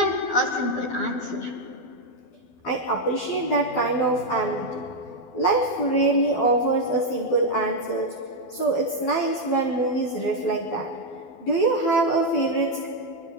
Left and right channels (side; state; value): right; late; 12 ms